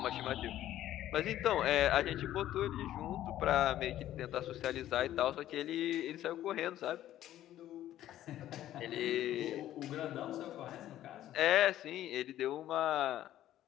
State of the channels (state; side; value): quieter; right; 12.9 dB